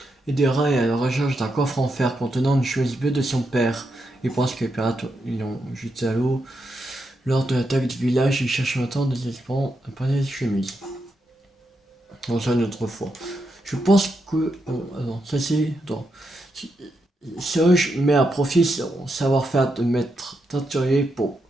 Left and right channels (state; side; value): normal; both; correlation 0.83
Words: Aidera est à la recherche d'un coffre en fer contenant une chemise bleue de son père. Il pense que les pirates l'ont jeté à l'eau. Lors de l'attaque du village, il cherche maintenant désespérant un panier de chemise. On ça une autre fois. Je pense que... attends, ça c'est... Attends. Serge met à profit son savoir-faire de maître teinturier pour